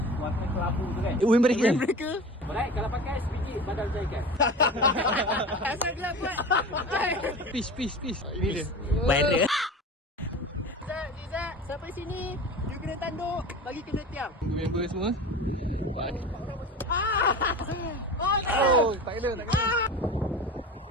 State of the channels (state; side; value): normal; both; correlation 0.33